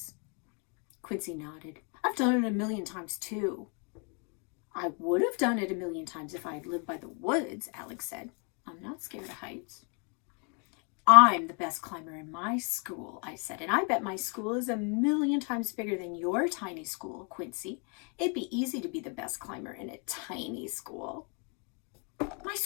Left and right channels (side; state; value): right; quieter; 36.7 dB